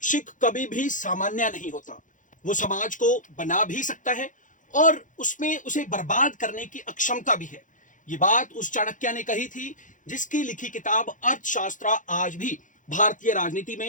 शैक्षिक कभी भी सामान्य नहीं होता। वो समाज को बना भी सकता है और उसमें उसे बर्बाद करने की अक्षमता भी है। ये बात उस चाणक्य ने कही थी जिसकी लिखी किताब अर्थशास्त्र आज भी भारतीय राजनीति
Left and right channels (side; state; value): right; late; 0.37 ms